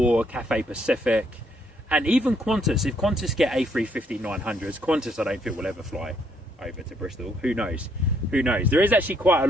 Cathay Pacific, and even Qantas. If Qantas get A350-900s, Qantas I don't think will ever fly over to Bristol. Who knows? Who knows? There is actually quite a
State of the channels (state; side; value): normal; both; correlation 0.70